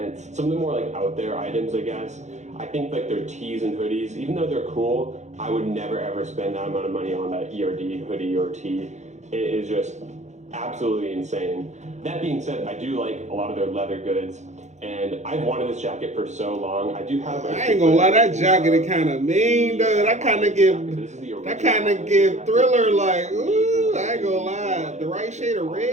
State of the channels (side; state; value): left; late; 0.34 ms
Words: some of the more like out there items, I guess. I think like their tees and hoodies, even though they're cool, I would never ever spend that amount of money on that ERD hoodie or tee. It is just absolutely insane. That being said, I do like a lot of their leather goods, and I've wanted this jacket for so long. I do have. I ain't gonna lie, that jacket is kind of mean, though. That kind of give Thriller like, ooh. I ain't gonna lie, the right shade of